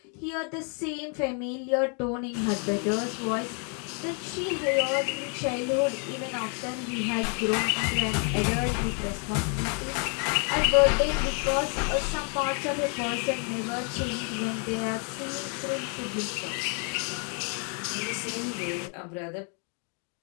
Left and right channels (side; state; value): right; quieter; 39.7 dB